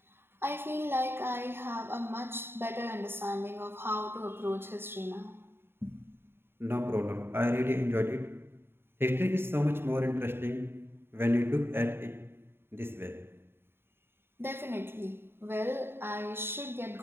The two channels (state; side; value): late; left; 0.11 ms